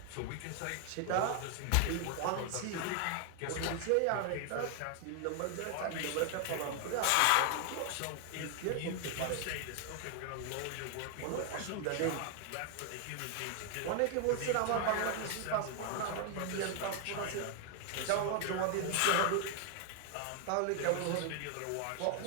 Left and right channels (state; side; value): different; both; correlation 0.00